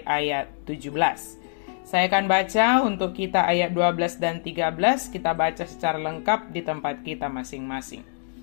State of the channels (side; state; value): right; silent; digital silence